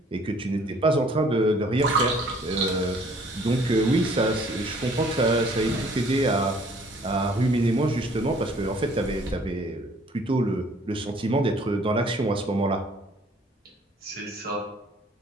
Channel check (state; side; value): normal; both; correlation 0.58